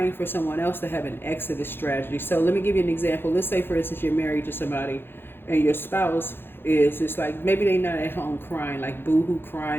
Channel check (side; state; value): right; late; 0.10 ms